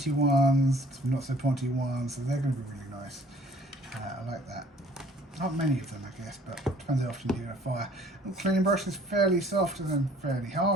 ones, some not so pointy ones, so they're going to be really nice. I like that. Not many of them, I guess, but it depends how often you do a fire. The cleaning brush is fairly soft and then fairly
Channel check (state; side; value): normal; both; correlation 0.55